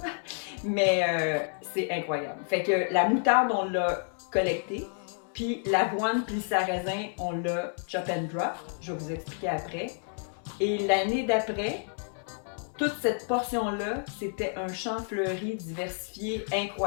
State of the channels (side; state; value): right; silent; 58 dB below the other